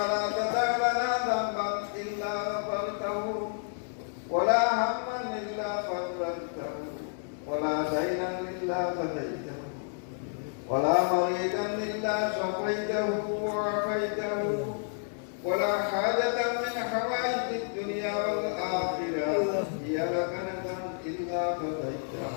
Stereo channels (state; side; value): silent; right; digital silence